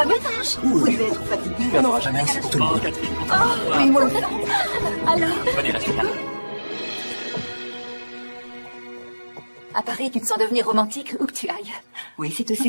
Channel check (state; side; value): inverted; both; correlation -1.00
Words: bien, ta hanche? Vous devez être fatigué. Il n'y en aura jamais assez pour tout le monde. Oui, moi aussi. Alors. Venez, restez là. À Paris, tu te sens devenir romantique où que tu ailles. Oui, c'est